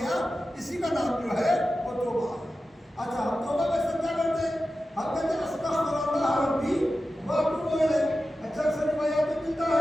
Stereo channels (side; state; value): both; normal; correlation 0.93